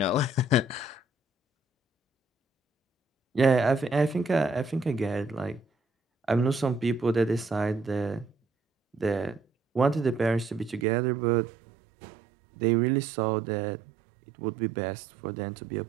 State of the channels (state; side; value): drops out; left; at 10.9 s